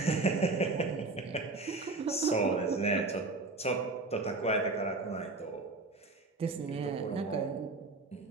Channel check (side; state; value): left; quieter; 3.4 dB